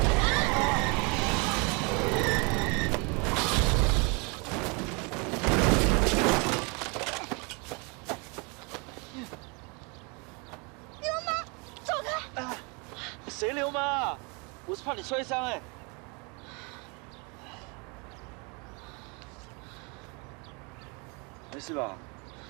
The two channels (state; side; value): quieter; left; 31.4 dB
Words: 流氓，走開！啊，誰流氓啊？我是怕你摔傷哎。 沒事吧？